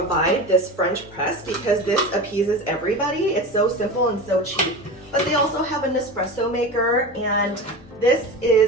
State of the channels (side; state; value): both; normal; correlation 0.28